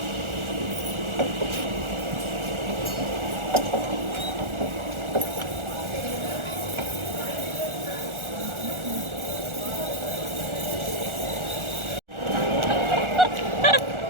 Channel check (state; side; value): late; left; 1.4 ms